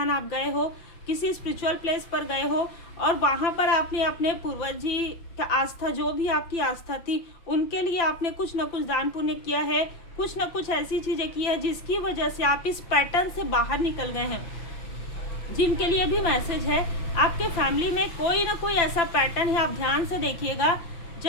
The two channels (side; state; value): right; late; 5.9 ms